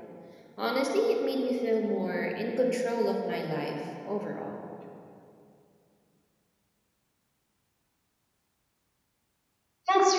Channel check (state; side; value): identical; both; correlation 1.00